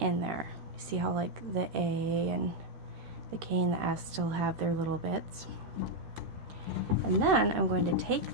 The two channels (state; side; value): late; left; 13 ms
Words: there. You see how like the A and the K and the S still have their little bits? And then I'm going to take